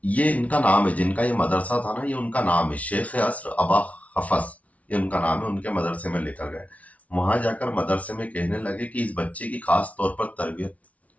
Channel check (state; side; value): late; right; 0.067 ms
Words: ये इनका नाम है, जिनका ये मदरसा था ना, ये उनका नाम है, शेख असर अबा खफस, ये उनका नाम है। उनके मदरसे में लेकर गए। वहां जाकर मदरसे में कहने लगे कि इस बच्चे की खास तौर पर तरबियत